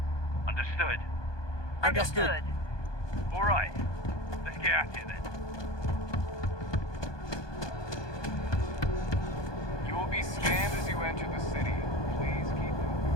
Understood? Understood. All right. Let's get at it then. You will be scanned as you enter the city. Please keep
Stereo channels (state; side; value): late; right; 1.2 ms